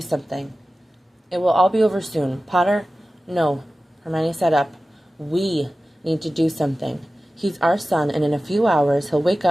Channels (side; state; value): both; normal; correlation 0.95